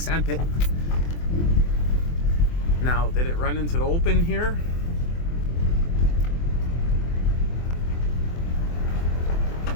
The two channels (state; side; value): late; right; 24 ms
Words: pit. Now, did it run into the open here?